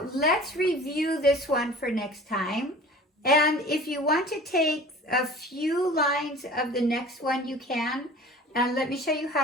let's review this one for next time. And if you want to take a few lines of the next one, you can. And let me show you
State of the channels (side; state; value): both; normal; correlation 0.43